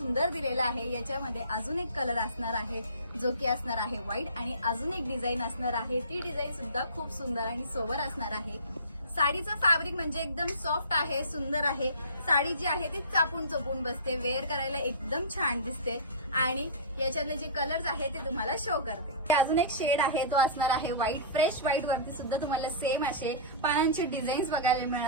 दिलेला आहे। याच्यामध्ये अजून एक कलर असणार आहे जो की असणार आहे व्हाईट, आणि अजून एक डिझाईन असणार आहे, ती डिझाईन सुद्धा खूप सुंदर आणि सोबर असणार आहे। साडीचं फॅब्रिक म्हणजे एकदम सॉफ्ट आहे, सुंदर आहे। साडी जी आहे ती चापून चोपून बसते, वेअर करायला एकदम छान दिसते। आणि याच्यातले जे कलर्स आहे ते तुम्हाला शो करते। अजून एक शेड आहे तो असणार आहे व्हाईट, फ्रेश व्हाईट वरती सुद्धा तुम्हाला सेम असे पानांचे डिझाईन्स बघायला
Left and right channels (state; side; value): inverted; both; correlation -0.32